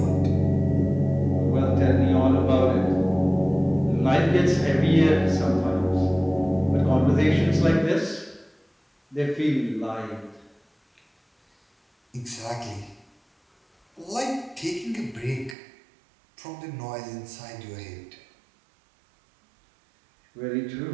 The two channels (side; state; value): left; drops out; at 15.6 s